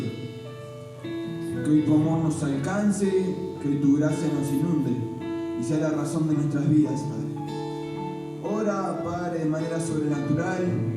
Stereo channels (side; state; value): both; identical; correlation 1.00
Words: Que hoy tu amor nos alcance, que hoy tu gracia nos inunde y sea la razón de nuestras vidas, Padre. Ora, Padre, de manera sobrenatural